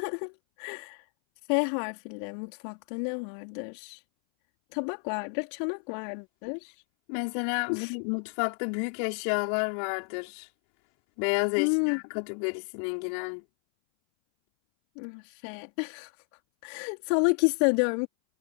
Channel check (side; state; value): right; silent; 57 dB below the other